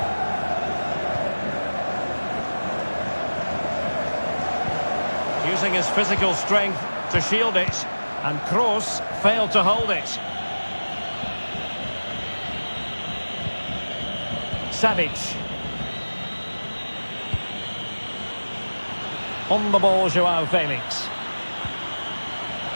Using his physical strength to shield it. And Kroos failed to hold it. Savic. On the ball, Joao Felix.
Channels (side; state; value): both; inverted; correlation -1.00